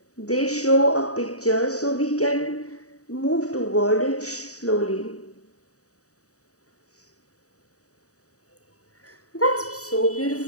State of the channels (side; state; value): right; late; 0.66 ms